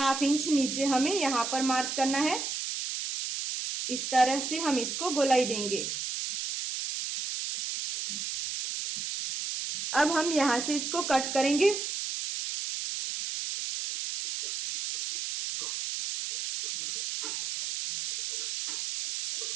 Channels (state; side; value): noise; right; hiss, 4 dB below the sound